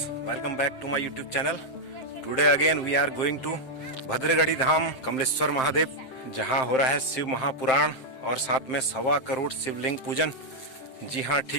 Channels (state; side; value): late; right; 7.7 ms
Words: welcome back to my YouTube channel. Today again we are going to भद्रगढ़ी धाम कमलेश्वर महादेव, जहां हो रहा है शिव महापुराण और साथ में 1.25 करोड़ शिवलिंग पूजन। जी हां,